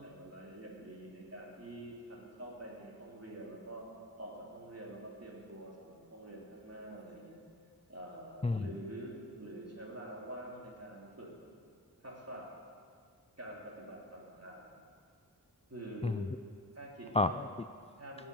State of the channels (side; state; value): both; normal; correlation 0.29